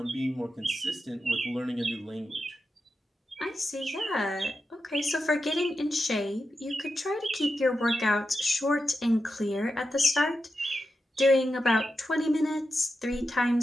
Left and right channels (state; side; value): normal; both; correlation 0.89